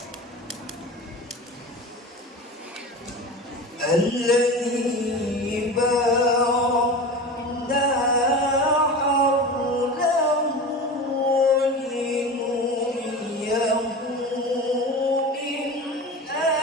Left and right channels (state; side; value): normal; both; correlation 0.30